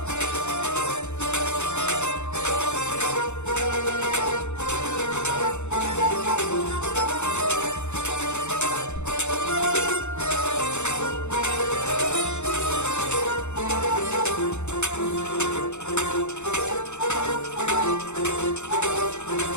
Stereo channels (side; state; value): right; late; 0.83 ms